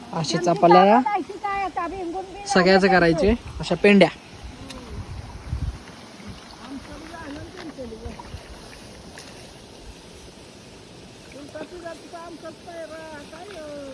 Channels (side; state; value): both; identical; correlation 1.00